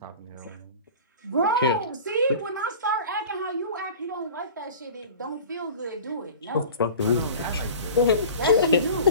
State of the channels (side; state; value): both; inverted; correlation -0.39